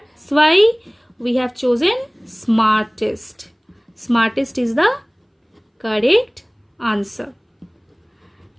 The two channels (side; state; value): both; identical; correlation 1.00